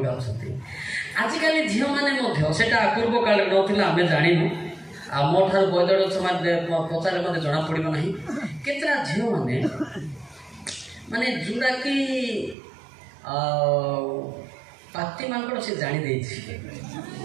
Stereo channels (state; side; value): drops out; left; at 12.6 s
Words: अच्छा आजिकल झील मैंने सेटा पूर्व काल ना आम जानू आ मो ठार बदड़ पचारे मत जना पड़ो ना केतरा झील मैंने माने जोड़ा कि पाती मांकड़ से जानी